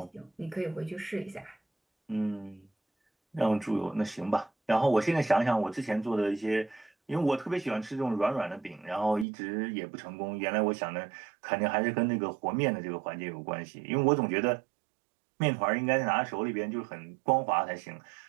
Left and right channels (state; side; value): drops out; left; at 9.2 s